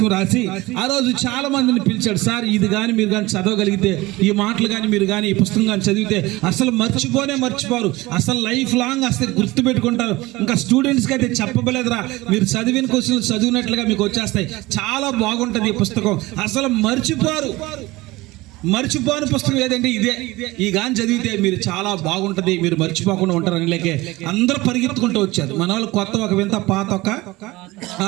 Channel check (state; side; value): quieter; left; 20.3 dB